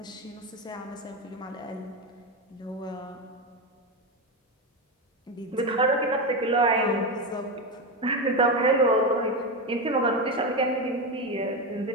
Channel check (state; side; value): normal; both; correlation 0.14